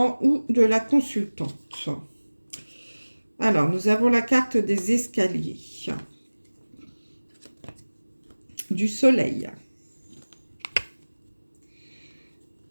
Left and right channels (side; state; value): both; inverted; correlation -1.00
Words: ou de la consultante. Alors, nous avons la carte des escaliers. Du soleil.